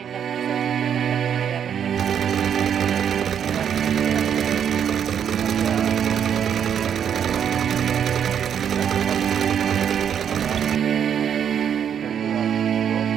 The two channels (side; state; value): left; quieter; 8.5 dB